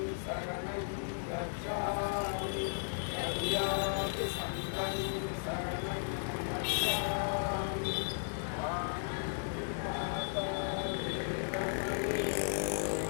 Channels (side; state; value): right; silent; 54 dB below the other